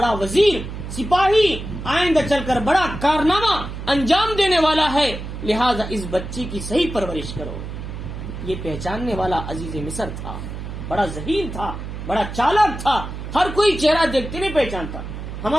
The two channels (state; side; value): noise; right; hum, 8 dB below the sound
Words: وزیر سپاہی، آئندہ چل کر بڑا کارنامہ انجام دینے والا ہے، لہذا اس بچی کی صحیح پرورش کرو۔ یہ پہچاننے والا عزیز مصر تھا، بڑا ذہین تھا، بڑا چالاک تھا، ہر کوئی چہرہ دیکھتے نہیں پہچانتا۔